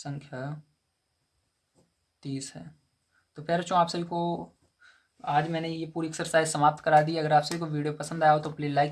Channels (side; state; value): both; identical; correlation 1.00